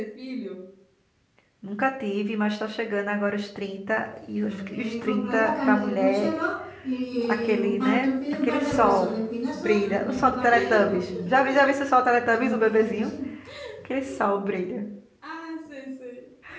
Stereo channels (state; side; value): identical; both; correlation 1.00